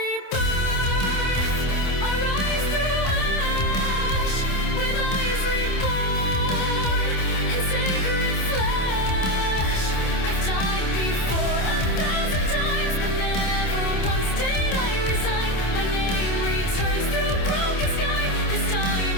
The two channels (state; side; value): late; right; 27 ms